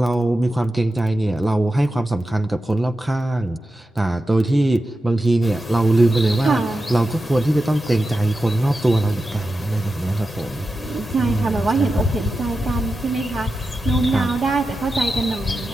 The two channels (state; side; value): normal; both; correlation 0.91